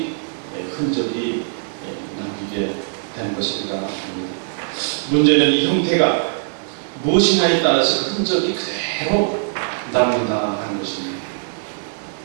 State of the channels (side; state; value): left; silent; digital silence